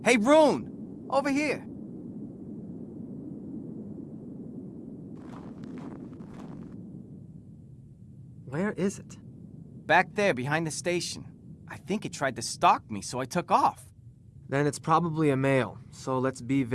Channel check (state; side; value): identical; both; correlation 1.00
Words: Hey, Rune! Over here. Where is it? Back there, behind the station. I think it tried to stalk me, so I took off. Then it's probably a male, so let's be